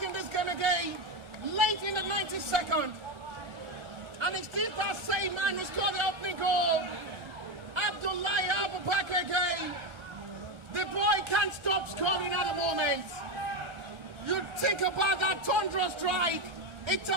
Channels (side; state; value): left; late; 1.4 ms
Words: in this game again. Late in the 92nd. And it's still that same man who scored the opening goal. Abdullahi Abubakar again. The boy can't stop scoring at the moment. You think about that Tundra strike. It's